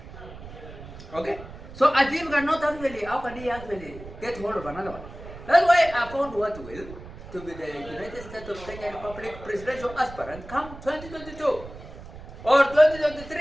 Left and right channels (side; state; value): right; noise; rumble, 15 dB below the sound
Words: Okay? So a thief cannot actually, how can he actually get hold of another one? That's why I found what will to be the United States of Kenya Republic presidential aspirant come 2022 or